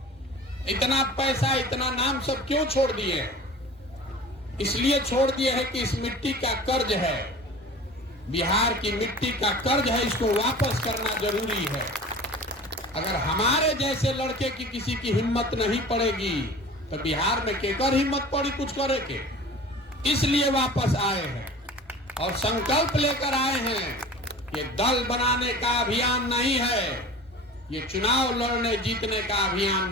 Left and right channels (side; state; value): both; normal; correlation 0.40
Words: इतना पैसा, इतना नाम सब क्यों छोड़ दिए? इसलिए छोड़ दिए है कि इस मिट्टी का कर्ज है, बिहार की मिट्टी का कर्ज है, इसको वापस करना जरूरी है। अगर हमारे जैसे लड़के की किसी की हिम्मत नहीं पड़ेगी तो बिहार में केकर हिम्मत पड़ी कुछ करे के? इसलिए वापस आए हैं और संकल्प लेकर आए हैं। ये दल बनाने का अभियान नहीं है, ये चुनाव लड़ने जीतने का अभियान